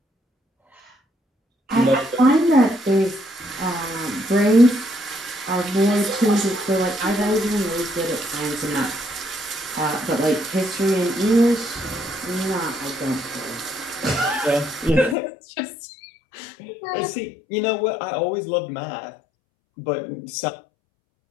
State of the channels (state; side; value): drops out; right; at 15.2 s